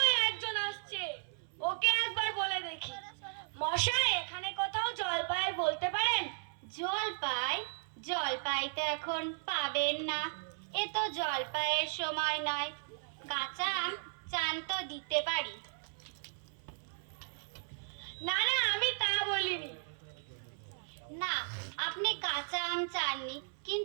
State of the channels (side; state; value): left; silent; 54 dB below the other